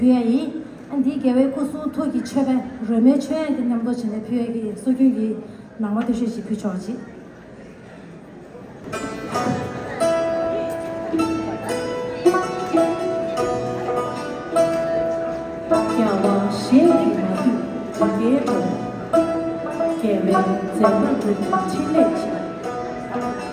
안디 개회 고수 토기 최배 ρ메 최의 남도 전에 표현이 소규기 낭만 대시지 표현지 야와 시행이 마두 개회 개회 제물 칠레지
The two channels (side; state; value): both; identical; correlation 1.00